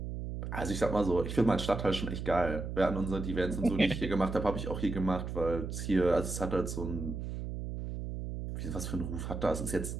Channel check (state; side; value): noise; right; hum, 5 dB below the sound